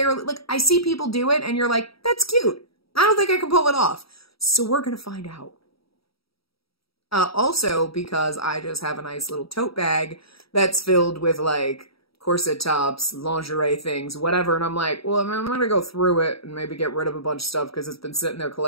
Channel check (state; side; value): late; right; 0.76 ms